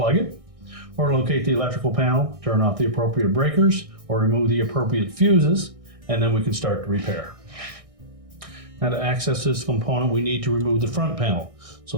it, or locate the electrical panel, turn off the appropriate breakers, or remove the appropriate fuses, and then we can start the repair. Now to access this component, we need to remove the front panel.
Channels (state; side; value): late; left; 1.6 ms